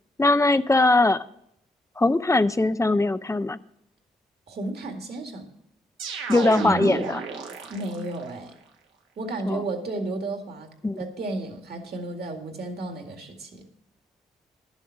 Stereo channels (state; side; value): normal; both; correlation 0.78